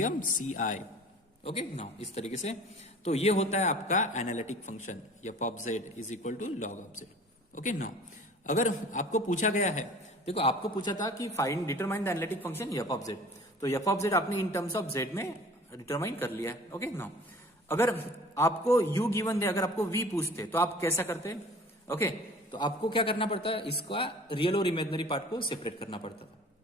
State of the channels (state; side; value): normal; both; correlation 0.45